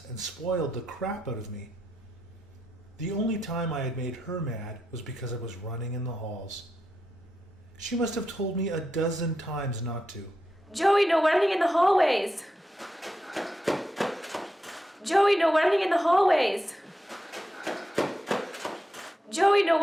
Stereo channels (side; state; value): both; normal; correlation 0.85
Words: and spoiled the crap out of me. The only time I had made her mad was because I was running in the halls. She must have told me a dozen times not to. Joey, no running in the hallways! Joey, no running in the hallways! Joey, no